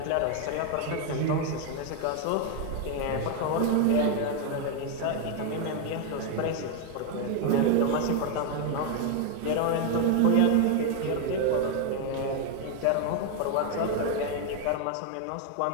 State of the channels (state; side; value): different; both; correlation 0.00